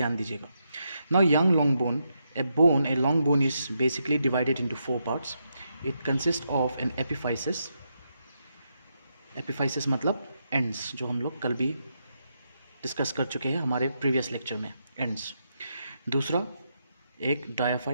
दीजिएगा. Now young long bone, a long bone is basically divided into 4 parts. It consist of an epiphysis. Epiphysis मतलब एंड्स, जो हम लोग कल भी डिस्कस कर चुके हैं हमारे प्रीवियस लेक्चर में, एंड्स. दूसरा एक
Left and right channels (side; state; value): both; inverted; correlation -0.82